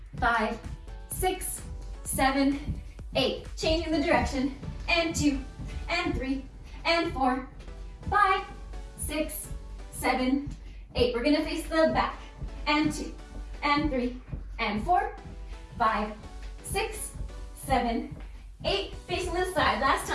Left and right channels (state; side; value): identical; both; correlation 1.00